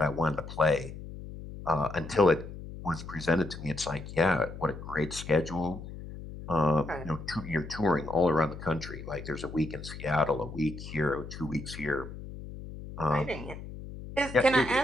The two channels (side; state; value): left; noise; hum, 11 dB below the sound